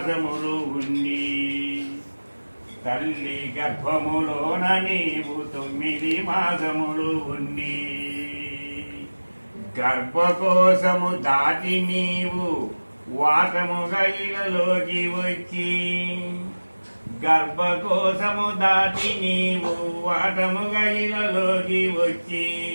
ఉండి తల్లి గర్భములోన నీవు 9 మాసములు ఉండి గర్భకోశము దాటి నీవు వాటముగా ఇలలోకి వచ్చి గర్భకోశము దాటి నీవు వాటముగా ఇలలోకి వచ్చి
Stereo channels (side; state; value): both; inverted; correlation -1.00